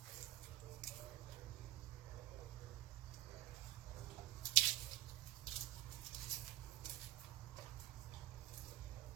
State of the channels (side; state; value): left; quieter; 15.1 dB